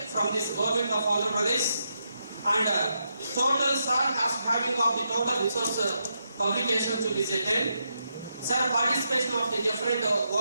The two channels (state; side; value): inverted; both; correlation -0.83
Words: from this government of Andhra Pradesh. And total sir has having of the total resource publication to be 10. Sir participation of the different